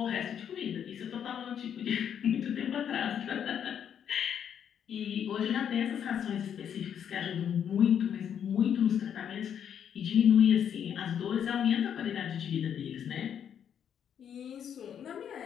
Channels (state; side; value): quieter; right; 8.7 dB